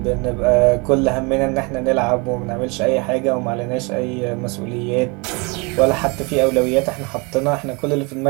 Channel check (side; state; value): left; quieter; 29.7 dB